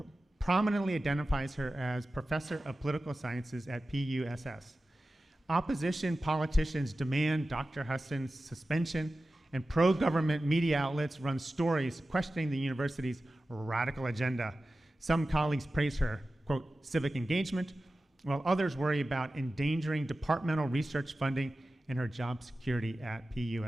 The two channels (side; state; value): both; normal; correlation 0.95